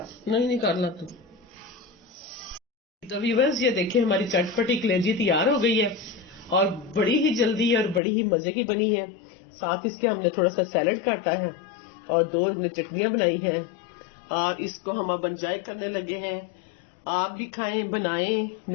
नहीं निकालना तो व्यूअर्स ये देखिए हमारी चटपटी कलेजी तैयार हो गई है और बड़ी ही जल्दी और बड़ी ही मजे की बनी है। साथ इसके हमने थोड़ा सा सैलड काटा है और 2 हमने चटनियां बनाई हैं और इसको हम अब एंजॉय करने लगे हैं। आप भी खाएं, बनाएं,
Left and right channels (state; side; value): drops out; right; at 8.0 s